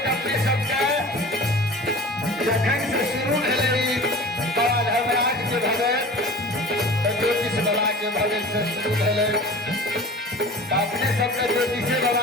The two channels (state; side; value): normal; both; correlation 0.39